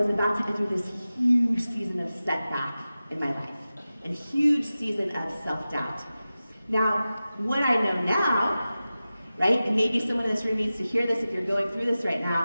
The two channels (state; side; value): inverted; both; correlation -0.95